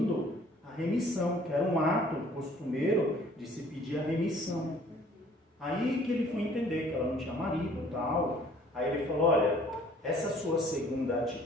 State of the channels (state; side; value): normal; both; correlation 0.56